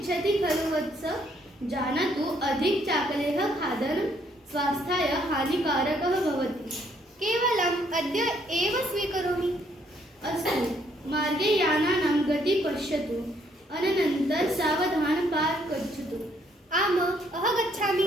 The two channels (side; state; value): both; normal; correlation 0.69